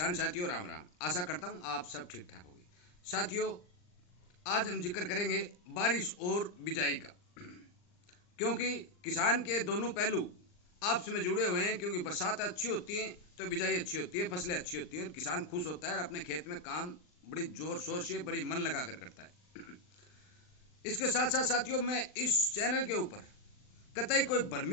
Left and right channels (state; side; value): late; right; 39 ms